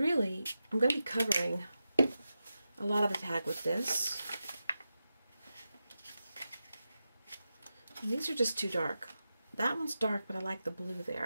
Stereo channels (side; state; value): both; inverted; correlation -0.91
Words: I'm going to be covering a lot of the tag with this. And these are just too dark. That one's dark, but I like the blue